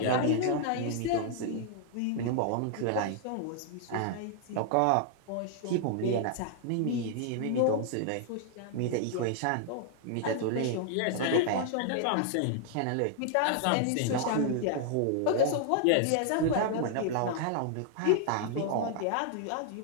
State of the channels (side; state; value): both; different; correlation -0.01